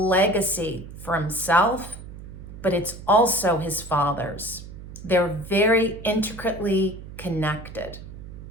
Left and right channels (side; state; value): right; noise; hum, 13 dB below the sound